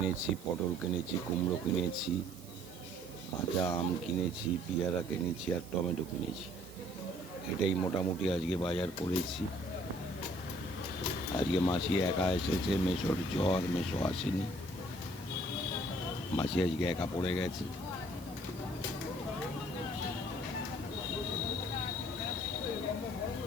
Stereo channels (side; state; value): right; noise; hiss, 20 dB below the sound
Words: পটল কিনেছি, কুমড়ো কিনেছি, কাঁচা আম কিনেছি, পেয়ারা কিনেছি আর টমেটো কিনেছি। এটাই মোটামুটি আজকে বাজার করেছি। আজকে মাসি একা এসেছে, মেসোর জ্বর, মেসো আসেনি। মাসি আজকে একা পড়ে গেছে।